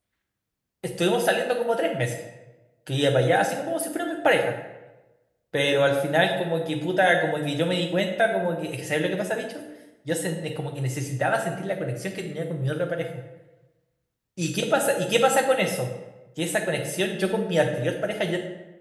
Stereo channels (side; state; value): both; identical; correlation 1.00